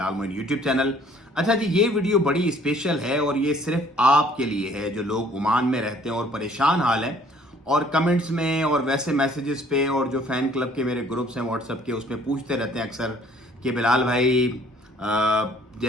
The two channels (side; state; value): both; normal; correlation 0.58